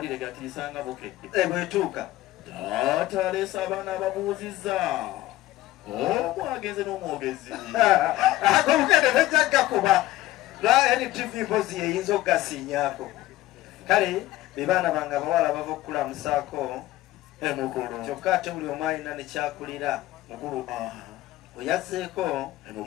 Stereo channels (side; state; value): right; quieter; 16.1 dB